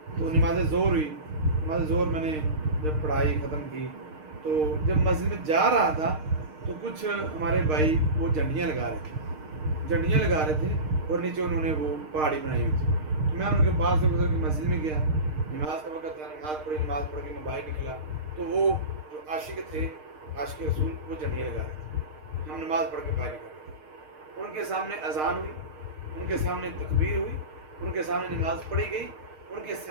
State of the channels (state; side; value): late; left; 6.5 ms